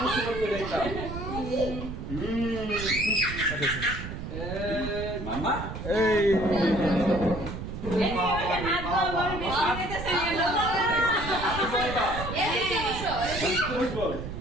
খুশি করতে যাইতাম মামা এই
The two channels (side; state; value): right; noise; rumble, 7 dB below the sound